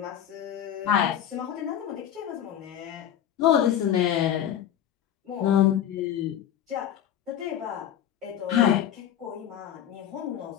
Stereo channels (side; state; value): right; quieter; 10.4 dB